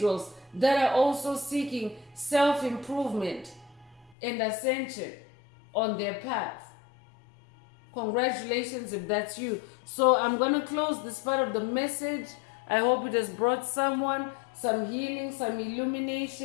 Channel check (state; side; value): drops out; right; at 4.2 s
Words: that are also seeking self-improvement and ascension on their path. Congratulations if that's you. So I'm going to close this part of the message. I hope it has brought someone some healing, some